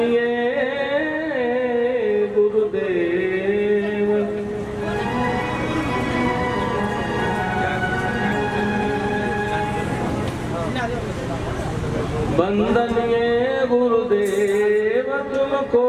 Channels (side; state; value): both; identical; correlation 1.00